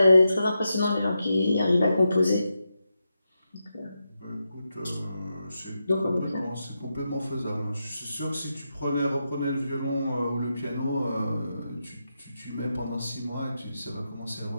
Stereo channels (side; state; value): both; inverted; correlation -0.87